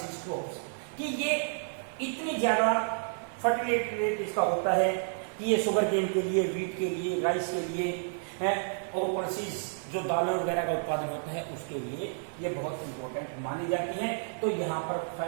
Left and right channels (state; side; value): silent; left; 57 dB below the other